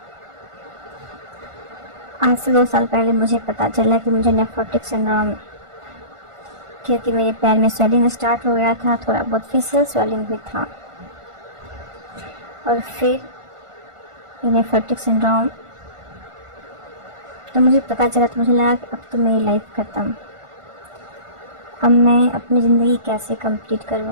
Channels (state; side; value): late; left; 1.5 ms